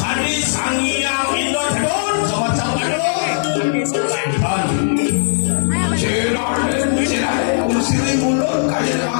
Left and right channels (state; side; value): silent; right; 68 dB below the other